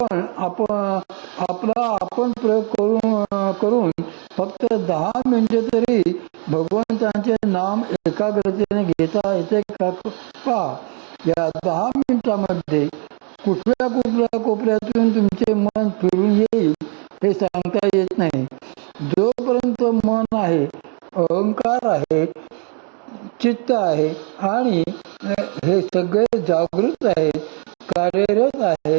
प्रयोग करून फक्त 10 मिनिटे तरी भगवंतांचे नाम एकाग्रतेने घेता येते का? पहा, या 10 मिनिटांमध्ये कुठल्या कोपऱ्यातून तुमचे मन फिरून येईल हे सांगता येत नाही. जोपर्यंत मन आहे, अहंकार आहे, चित्त आहे आणि हे सगळे जागृत आहेत, कार्यरत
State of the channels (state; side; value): quieter; left; 37.3 dB